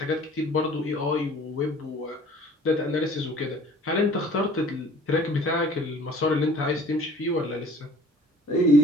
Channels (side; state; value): both; normal; correlation 0.50